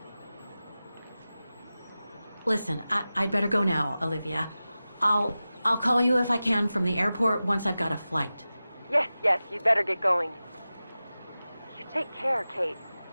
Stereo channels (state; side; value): inverted; both; correlation -0.95